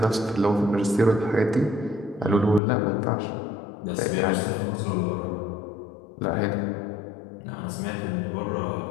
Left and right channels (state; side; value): drops out; right; at 2.6 s